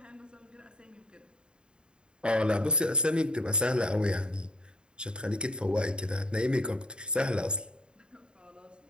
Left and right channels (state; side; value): late; left; 0.051 ms